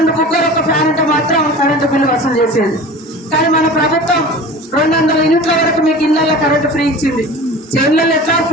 కుక్కర్ ఒక ఫ్యాన్ ఉంటే మాత్రం కరెంటు బిల్లు వసూలు చేసేది. కానీ మన ప్రభుత్వం 200 యూనిట్ల వరకు మీకు ఇళ్లలో కరెంటు ఫ్రీ ఇచ్చింది. చేనులలో ఎట్లా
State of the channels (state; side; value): normal; both; correlation 0.37